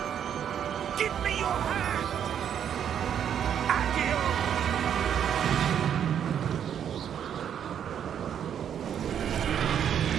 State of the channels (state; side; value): quieter; left; 8.9 dB